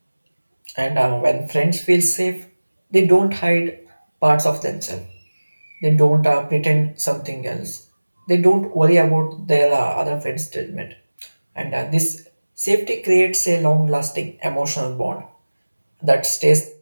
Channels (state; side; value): inverted; both; correlation -1.00